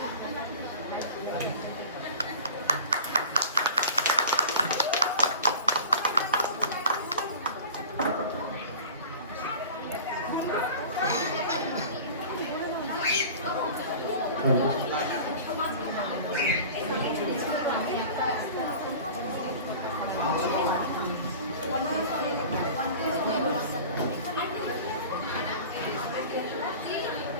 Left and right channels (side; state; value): both; inverted; correlation -0.38